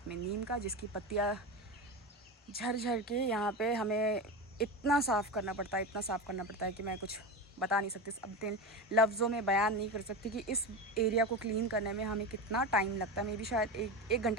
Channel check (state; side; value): normal; both; correlation 0.22